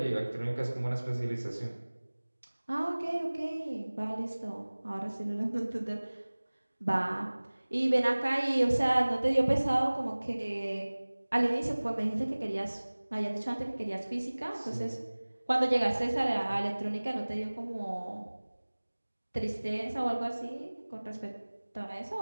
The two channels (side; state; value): both; inverted; correlation -1.00